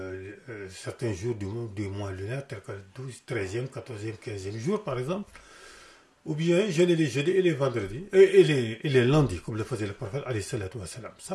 certains jours du mois lunaire, tels que le 12, 13e, 14e, 15e jour par exemple, ou bien jeûner les jeudis et les vendredis, et les lundis, comme le faisait le prophète alayhi salatu wa salam.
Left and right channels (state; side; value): identical; both; correlation 1.00